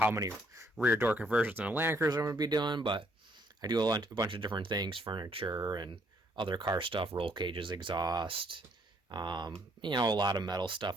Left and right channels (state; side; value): normal; both; correlation 0.68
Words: many rear door conversions and Land Cruiser I'm going to be doing, but I do a bunch of different things, furniture and other car stuff, roll cages, exhaust, a lot of metal